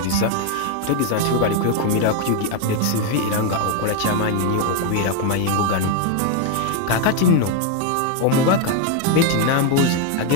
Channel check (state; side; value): different; both; correlation 0.01